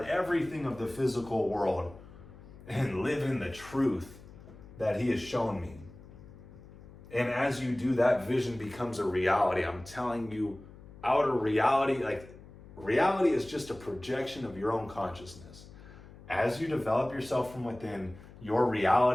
everything of the physical world and live in the truth that he has shown me. And as you do, that vision becomes a reality. I'm telling you, outer reality, like reality is just a projection of your own consciousness. As you develop yourself from within, your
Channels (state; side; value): noise; left; hum, 19 dB below the sound